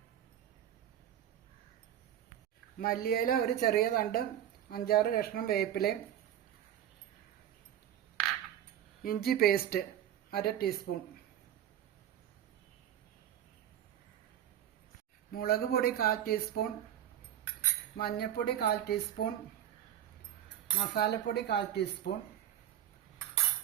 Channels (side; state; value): left; quieter; 10.9 dB